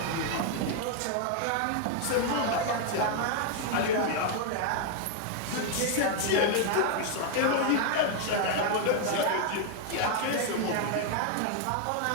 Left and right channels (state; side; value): different; both; correlation 0.00